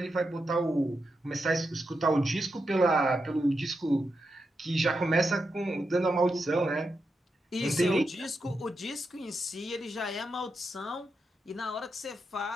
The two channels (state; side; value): normal; both; correlation 0.86